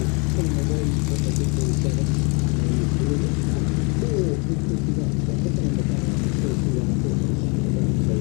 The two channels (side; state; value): right; quieter; 32.1 dB